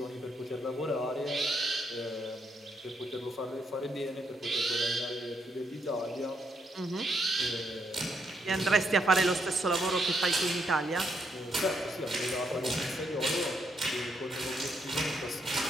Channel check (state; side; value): normal; both; correlation 0.77